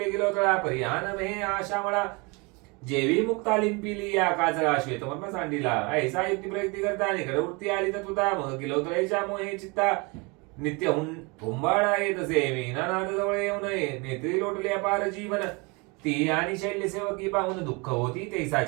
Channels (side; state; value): left; quieter; 28.7 dB